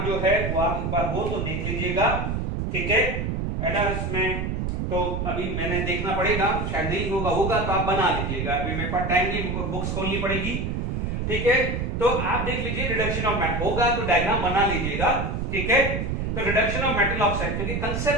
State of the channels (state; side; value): noise; right; rumble, 2 dB below the sound